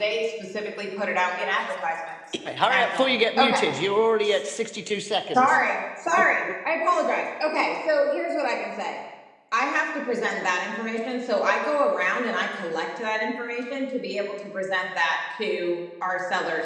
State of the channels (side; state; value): both; identical; correlation 1.00